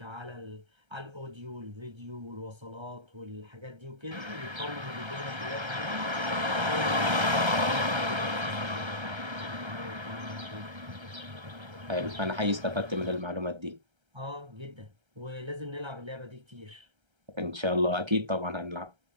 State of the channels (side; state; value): left; late; 1.3 ms